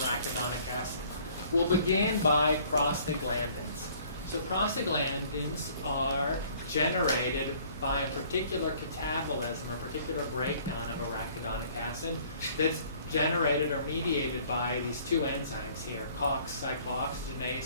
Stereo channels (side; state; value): both; inverted; correlation -0.56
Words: acid. We'll begin by prostaglandins. So prostaglandins are generated by a particular catabolism or particular breakdown of arachidonic acid that's generated or mediated by these two enzymes here, COX